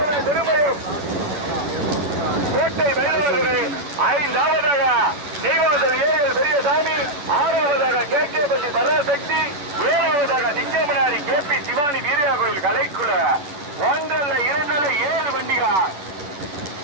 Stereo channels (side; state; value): left; late; 10 ms